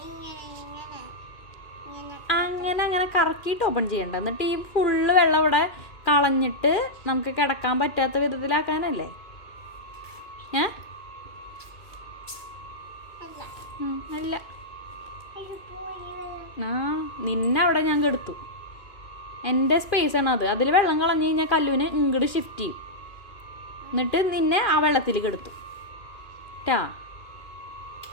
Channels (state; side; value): late; right; 2.4 ms